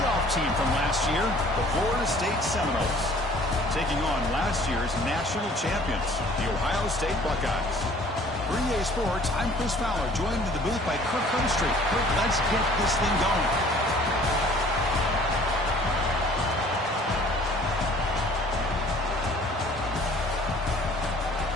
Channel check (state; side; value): normal; both; correlation 0.53